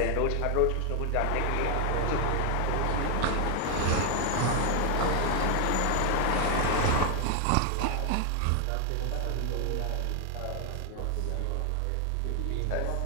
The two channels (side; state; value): both; different; correlation 0.00